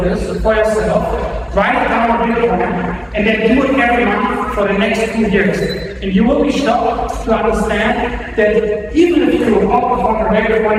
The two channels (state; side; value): identical; both; correlation 1.00